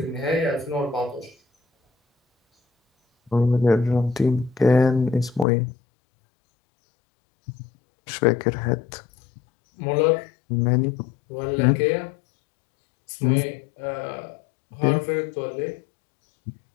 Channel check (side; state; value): right; drops out; at 5.5 s